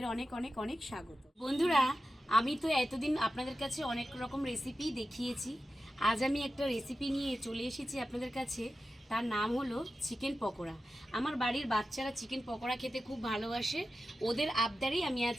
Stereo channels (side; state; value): both; normal; correlation 0.92